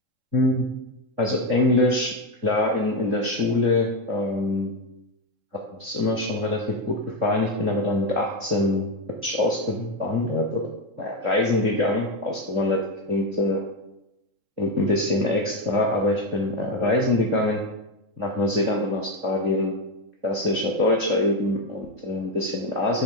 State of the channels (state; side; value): late; left; 3.7 ms